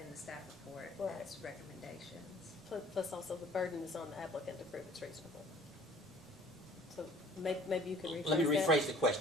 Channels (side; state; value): both; normal; correlation 0.51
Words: the staff report. Right. It's recommendations. Plus also the burden is on the applicant to prove it's reasonable. So maybe you can rephrase that. Let me rephrase the